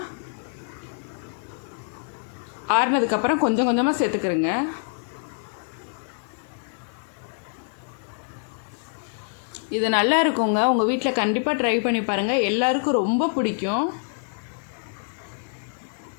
ஆறினதுக்கப்புறம் கொஞ்சம் கொஞ்சமாக சேர்த்துக்கிறேங்க. இது நல்லா இருக்குங்க. உங்கள் வீட்டில் கண்டிப்பாக ட்ரை பண்ணி பாருங்கள். எல்லாருக்கும் ரொம்ப பிடிக்கும்.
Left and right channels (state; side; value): silent; right; digital silence